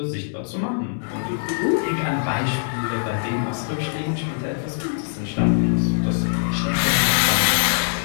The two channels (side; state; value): right; silent; 59 dB below the other